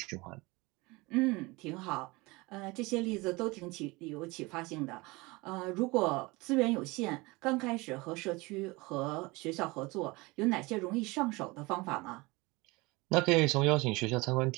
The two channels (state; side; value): quieter; left; 23.8 dB